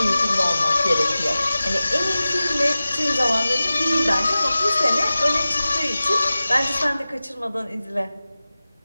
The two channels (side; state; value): both; inverted; correlation -0.96